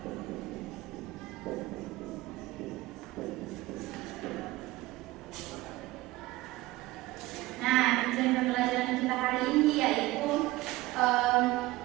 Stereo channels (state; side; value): quieter; left; 18.5 dB